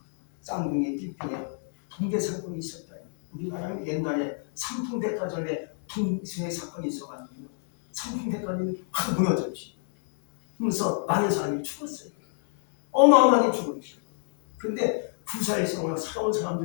쌍둥이 띠피에 붕괴 사건이 있었어요. 우리나라는 옛날에 삼풍백화점에 붕괴 사건이 있어가지고 삼풍백화점이 확 무너졌지. 그래서 많은 사람이 죽었어요. 어마어마하게 죽었죠. 근데 부사에서 살아온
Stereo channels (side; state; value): right; silent; digital silence